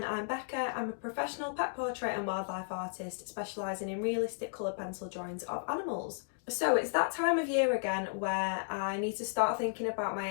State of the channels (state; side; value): silent; right; digital silence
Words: I'm Becca. I'm a professional pet portrait and wildlife artist specialising in realistic coloured pencil drawings of animals. So it's that time of year again where I need to start thinking about my